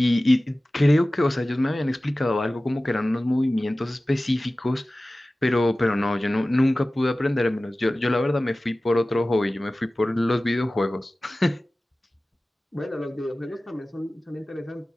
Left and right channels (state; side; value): normal; both; correlation 0.97